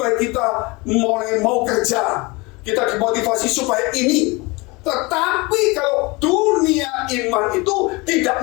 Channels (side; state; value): right; quieter; 25.3 dB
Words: kita mulai mau kerja. Kita dimotivasi supaya ini. Tetapi kalau dunia iman itu tidak